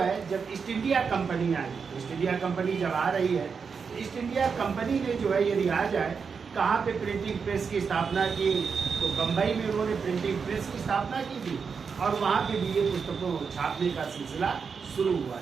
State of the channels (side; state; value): left; quieter; 5.7 dB